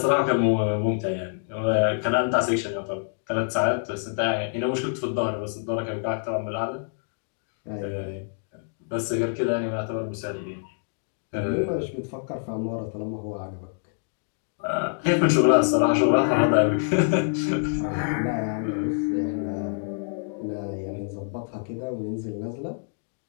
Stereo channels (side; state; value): right; silent; digital silence